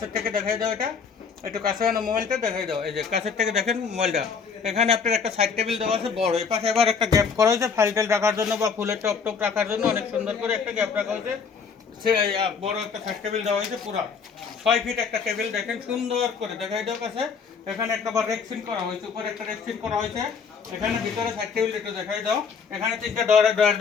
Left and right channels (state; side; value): quieter; right; 5.9 dB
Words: থেকে দেখাই দাও, এটা একটু কাছে মোবাইলটা দেখাই দাও। এই যে কাছের থেকে দেখেন মোবাইলটা। এখানে আপনার একটা সাইড টেবিল দেওয়া আছে বড়, এ পাশে এবার একটা গ্যাপ করা হয়েছে ফাইল টেল রাখার জন্য বা ফুলের টপ রাখার জন্য অনেক সুন্দর করে একটা গ্যাপ রাখা হয়েছে। বড় একটা সাইড টেবিল দেওয়া হয়েছে, পুরা 6 ফিট একটা টেবিল, দেখেন সুন্দর করে দেখাই দাও কাছে। এখানে একটা রেক্সিন করা হয়েছে, উপরে একটা রেক্সিন করা হয়েছে। এখানে ভিতরে সাইড টেবিল একটু দেখাই দাও। এখানে তিনটা ডয়ার